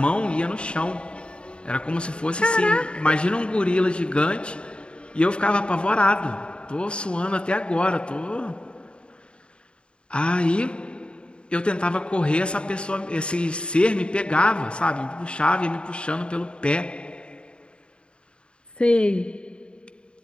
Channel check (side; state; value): right; late; 0.054 ms